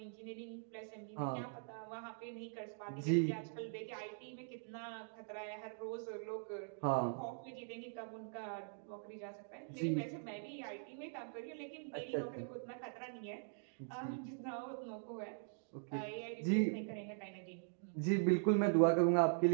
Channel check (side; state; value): left; silent; digital silence